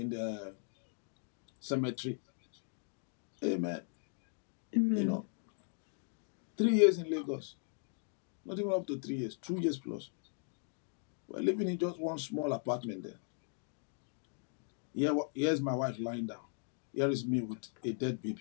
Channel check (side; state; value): right; silent; 52 dB below the other